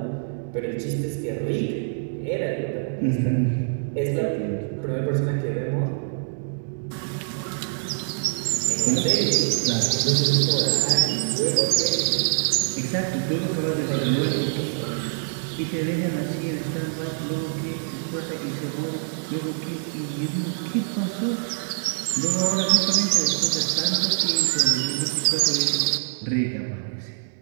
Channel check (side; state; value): left; silent; digital silence